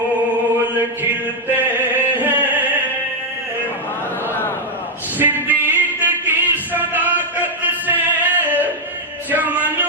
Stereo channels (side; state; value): both; normal; correlation 0.01